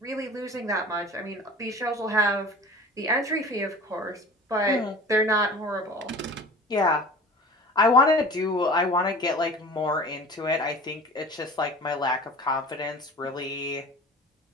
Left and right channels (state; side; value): normal; both; correlation 0.41